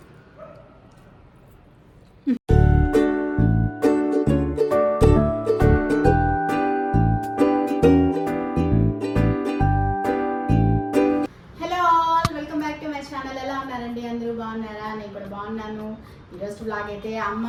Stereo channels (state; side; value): identical; both; correlation 1.00